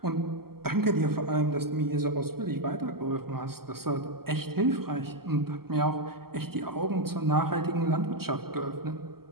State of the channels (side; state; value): left; late; 0.94 ms